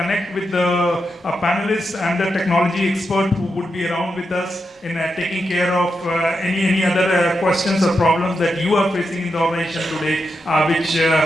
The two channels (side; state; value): both; normal; correlation 0.86